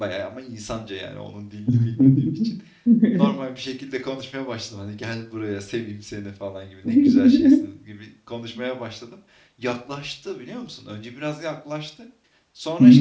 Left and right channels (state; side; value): identical; both; correlation 1.00